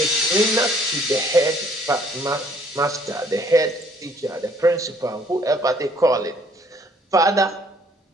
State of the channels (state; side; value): normal; both; correlation 0.61